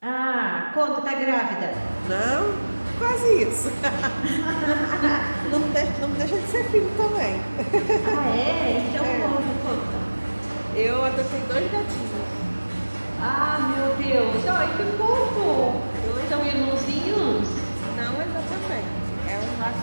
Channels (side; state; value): both; inverted; correlation -1.00